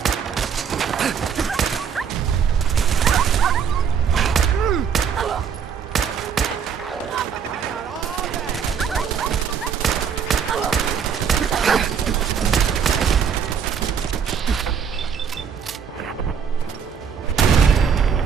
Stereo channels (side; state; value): left; quieter; 7.2 dB